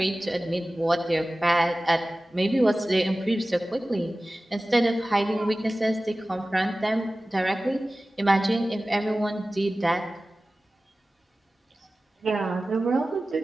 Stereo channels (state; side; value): normal; both; correlation 0.97